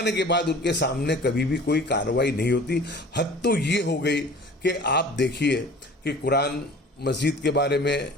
के बाद उनके सामने कभी भी कोई कार्रवाई नहीं होती। हद तो ये हो गई कि आप देखिए कि कुरान मस्जिद के बारे में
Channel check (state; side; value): normal; both; correlation 0.44